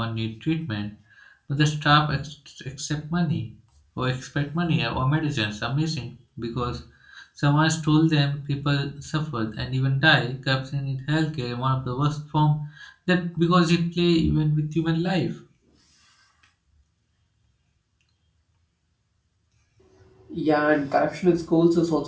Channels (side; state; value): both; identical; correlation 1.00